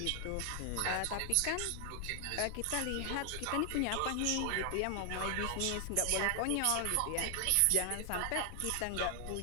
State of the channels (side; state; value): both; different; correlation 0.00